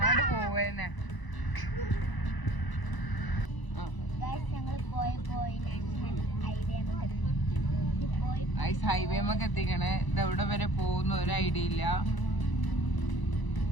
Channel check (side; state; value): right; late; 1.0 ms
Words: ആട് പോവേനെ. ഐസ് ഹൈവേമൊക്കെ എത്തിക്കണേ. ഇതെവിടെ വരെ പോകുന്നു ഒരു ഐഡിയ ഇല്ല.